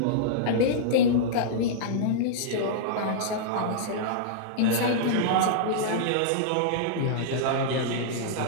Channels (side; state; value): both; different; correlation -0.02